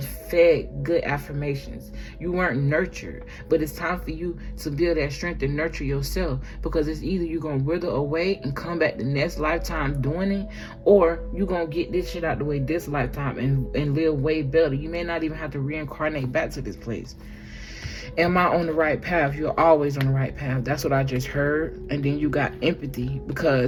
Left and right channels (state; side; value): identical; both; correlation 1.00